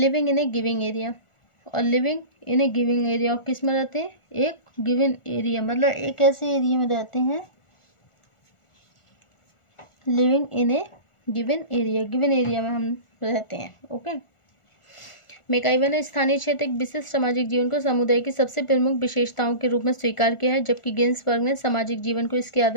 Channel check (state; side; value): late; right; 1.4 ms